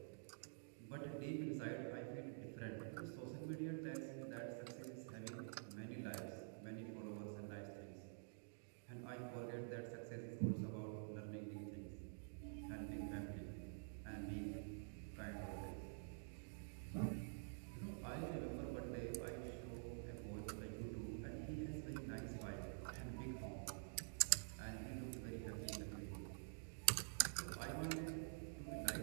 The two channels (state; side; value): silent; left; digital silence